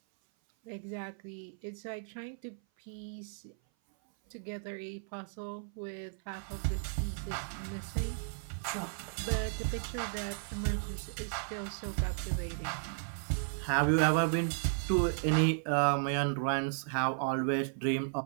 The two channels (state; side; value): silent; left; 55 dB below the other